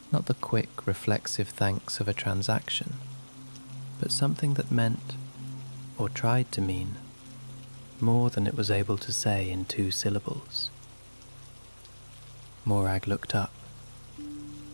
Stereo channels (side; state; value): both; inverted; correlation -1.00